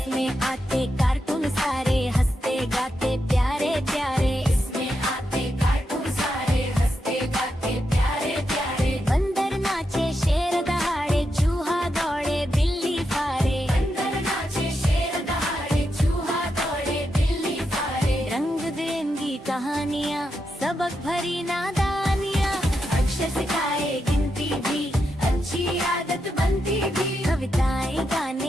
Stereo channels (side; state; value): both; normal; correlation 0.85